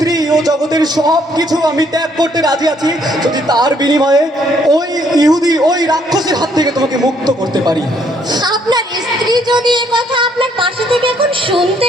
ও জগতের সব কিছু আমি ত্যাগ করতে রাজি আছি, যদি তার বিনিময়ে ওই ইহুদি, ওই রাক্ষসের হাত থেকে তোমাকে মুক্ত করতে পারি। আপনার স্ত্রী যদি এ কথা আপনার পাশে থেকে এখন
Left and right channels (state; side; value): normal; both; correlation 0.67